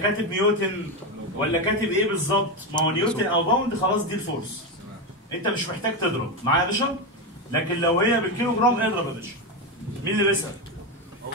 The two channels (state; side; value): normal; both; correlation 0.12